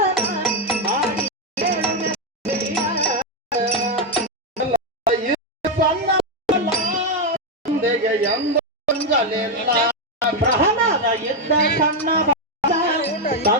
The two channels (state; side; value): normal; both; correlation 0.04